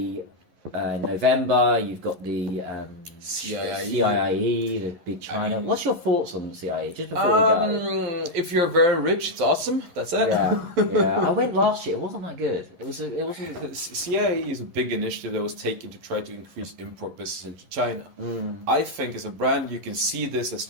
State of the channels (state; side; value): late; left; 11 ms